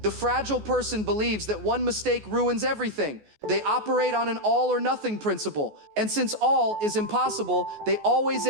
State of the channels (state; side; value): late; left; 14 ms